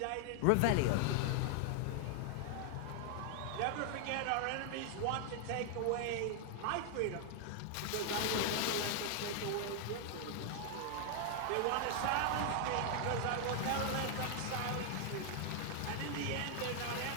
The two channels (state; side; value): different; both; correlation 0.00